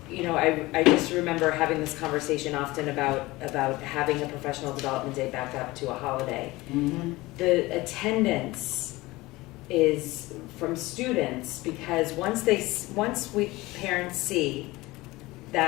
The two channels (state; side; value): quieter; right; 20.3 dB